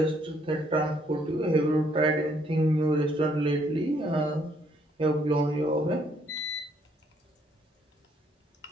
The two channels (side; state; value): both; normal; correlation 0.68